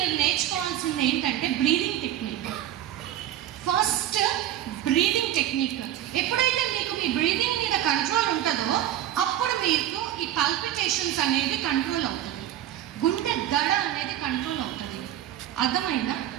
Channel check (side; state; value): left; quieter; 12.2 dB